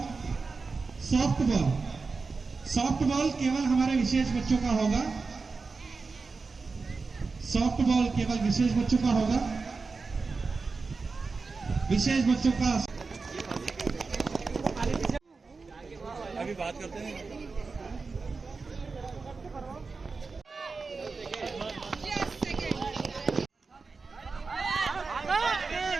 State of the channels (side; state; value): left; quieter; 4.3 dB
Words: सॉफ्टबॉल केवल हमारे विशेष बच्चों का होगा। सॉफ्टबॉल केवल विशेष बच्चों का होगा। विशेष बच्चों का अभी बात करते हैं।